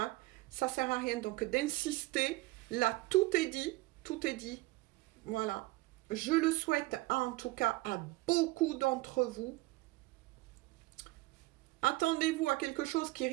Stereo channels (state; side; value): quieter; left; 20.8 dB